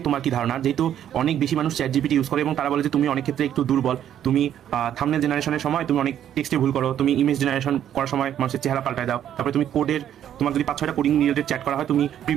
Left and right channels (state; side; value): quieter; left; 10.4 dB